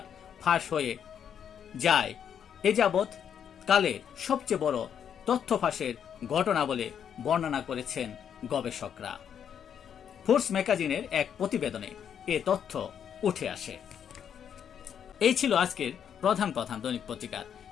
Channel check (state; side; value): quieter; right; 8.4 dB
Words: ফাঁস হয়ে যায় এ যাবৎ কালের সবচেয়ে বড় তথ্য ফাঁসের ঘটনা বলে বর্ণনা করেছেন গবেষকরা। ফোর্স ম্যাগাজিনের এক প্রতিবেদনে এ তথ্য উঠে আসে। এই ছিল আজকের প্রধান প্রধান দৈনিক পত্রিকার